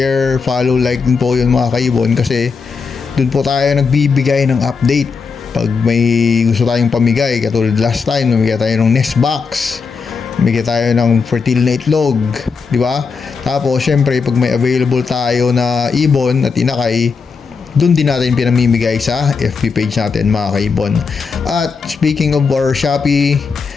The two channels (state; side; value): quieter; right; 5.2 dB